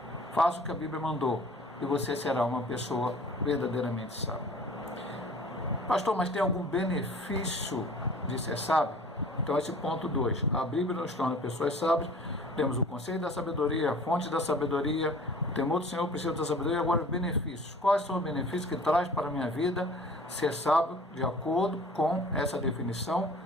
Faça o que a Bíblia mandou. e você será uma pessoa verdadeiramente sábia. Pastor, mas tem algum benefício de ser sábio? Então esse ponto 2, a Bíblia nos torna pessoas sábias. Temos o conceito da sabedoria, a fonte da sabedoria, o temor do Senhor, o princípio da sabedoria. Agora os benefícios. Quais são os benefícios que traz para a minha vida ser sábio de acordo com essa definição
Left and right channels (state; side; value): normal; both; correlation 0.47